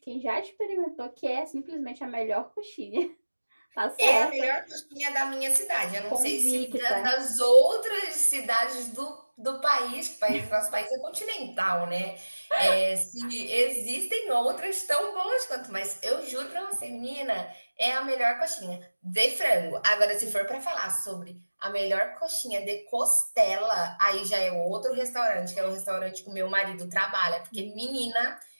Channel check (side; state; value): both; inverted; correlation -1.00